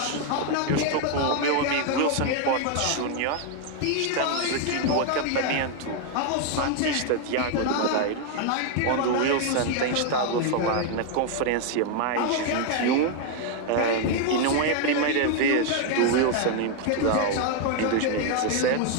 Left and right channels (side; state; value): both; different; correlation 0.01